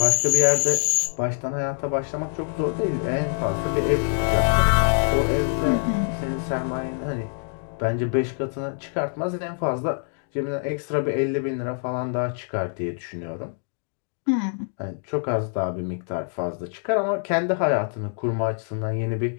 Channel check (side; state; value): right; silent; 60 dB below the other